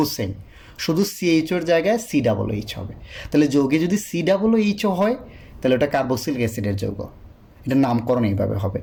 সেম, শুধু CHOর জায়গায় COOH হবে। তাহলে যৌগে যদি COOH হয়, তাহলে ওটা কার্বক্সিলিক অ্যাসিডের যৌগ, এটার নামকরণ এইভাবে হবে।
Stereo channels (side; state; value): both; identical; correlation 1.00